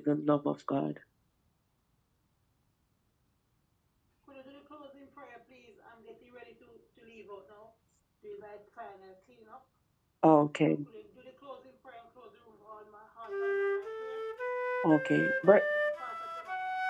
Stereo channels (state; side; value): identical; both; correlation 1.00